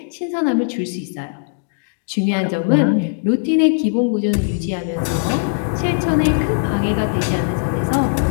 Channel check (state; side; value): silent; right; digital silence